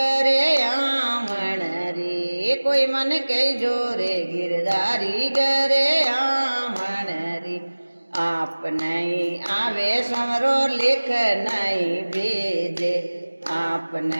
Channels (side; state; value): both; inverted; correlation -1.00